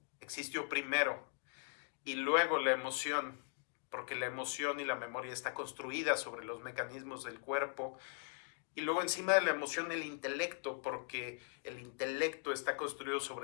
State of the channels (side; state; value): right; silent; 51 dB below the other